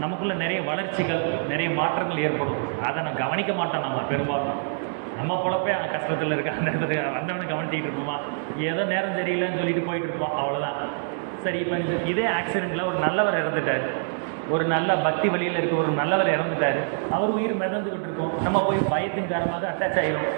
நமக்குள்ளே நிறைய வளர்ச்சிகள், நிறைய மாற்றங்கள் ஏற்படும். அதை நான் கவனிக்க மாட்டோம். நம்ம பெரும்பாலும் நம்ம பொழப்பே கஷ்டத்தில் இருக்க அந்த இடத்துல வந்தவனை கவனிச்சிக்கிட்டு இருப்போமா, ஏதோ நேரம் சரியில்லைன்னு சொல்லிட்டு போயிட்டு இருப்போம், அவ்வளோதான். சரி, இப்போ இதே ஆக்சிடெண்ட்டில் ஒரு நல்லவர் இறந்துட்டார், ஒரு நல்ல பக்தி வழியில் இருக்க ஒரு நல்லவர் இறந்துட்டார், அவர் உயிர் மிதந்துக்கிட்டு இருக்கோம். நம்ம போய் பயத்தின் காரணமாக அட்டாச் ஆகிடும்.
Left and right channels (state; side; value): silent; left; digital silence